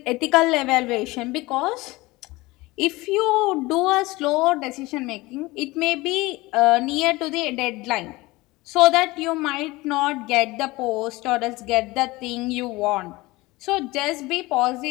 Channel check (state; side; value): quieter; right; 21.1 dB